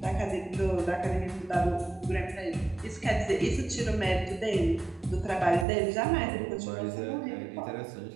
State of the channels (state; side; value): drops out; left; at 5.7 s